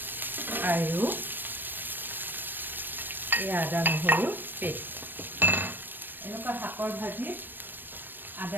আৰু এই আদা নহৰু পেষ্ট। এনেকুৱা শাকৰ ভাজিত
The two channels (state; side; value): late; left; 0.093 ms